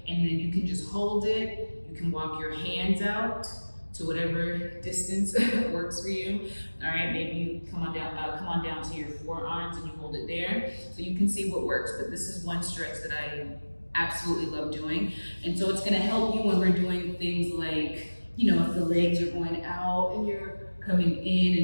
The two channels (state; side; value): inverted; both; correlation -1.00